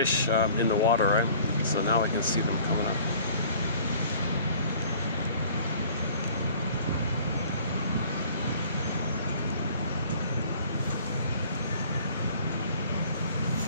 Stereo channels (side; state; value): both; inverted; correlation -0.51